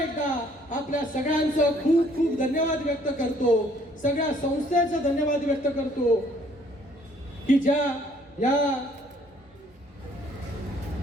आपल्या सगळ्यांचं खूप खूप धन्यवाद व्यक्त करतो. सगळ्या संस्थेचं धन्यवाद व्यक्त करतो की ज्या या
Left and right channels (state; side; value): normal; both; correlation 0.61